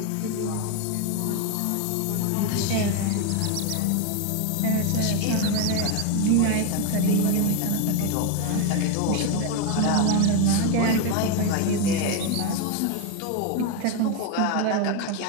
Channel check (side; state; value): both; different; correlation 0.02